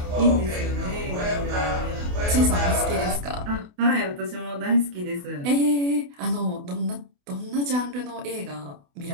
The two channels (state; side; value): late; left; 28 ms